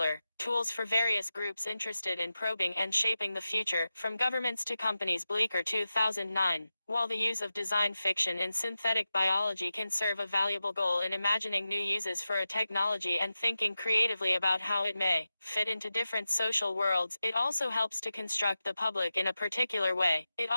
tools for various groups interested in probing and shaping the future, from governments to companies. Bleecker 2009. While the use of design fiction in synthetic biology can serve a valuable goal in imagining new uses for a technology and thinking creatively about how it may fit into different social worlds, it also helps to construct the public in a particular way. It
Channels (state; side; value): inverted; both; correlation -0.92